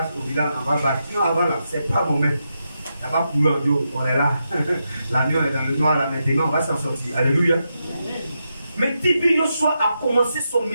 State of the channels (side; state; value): both; inverted; correlation -0.85